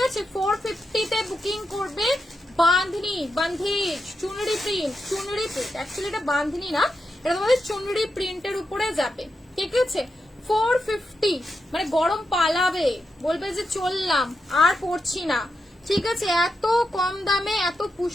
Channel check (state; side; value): normal; both; correlation 0.87